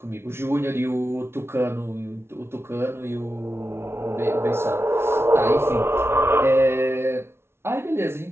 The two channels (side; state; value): left; late; 0.12 ms